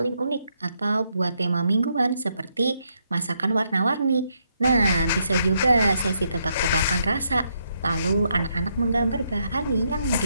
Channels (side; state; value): both; inverted; correlation -0.77